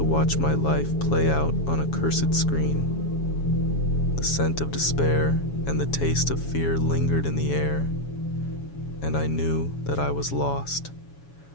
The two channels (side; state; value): right; late; 7.2 ms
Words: watch my life play out on a cursed screen. The scent of despair and the taste of fear lingered in the air, and I knew that I was lost,